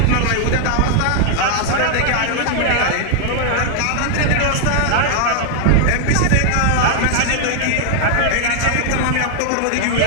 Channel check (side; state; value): both; different; correlation 0.00